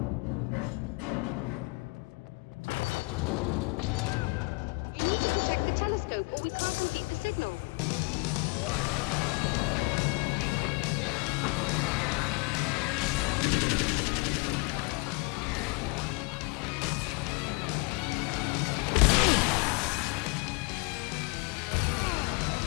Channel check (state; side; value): quieter; right; 28.9 dB